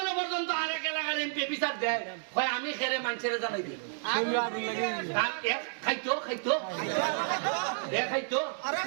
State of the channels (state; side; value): silent; left; digital silence